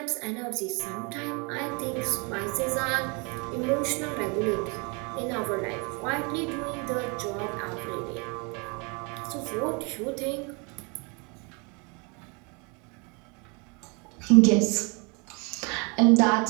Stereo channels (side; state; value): left; quieter; 31.9 dB